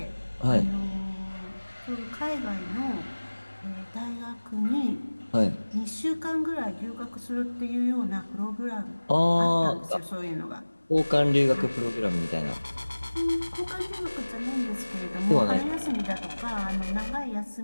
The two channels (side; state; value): both; inverted; correlation -1.00